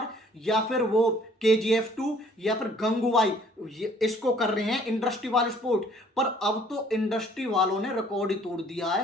या फिर वो KGF 2 या फिर गंगूबाई इसको कर रहे हैं इंडस्ट्री वाले सपोर्ट। पर अब तो इंडस्ट्री वालों ने रिकॉर्ड ही तोड़ दिया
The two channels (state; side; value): normal; both; correlation 0.58